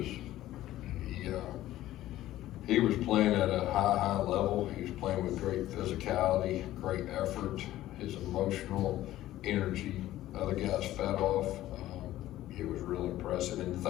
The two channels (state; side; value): quieter; right; 14.6 dB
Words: he was playing at a high level. He was playing with great physicality, great effort, his emotional energy. Other guys fed off. It was real impressive. And the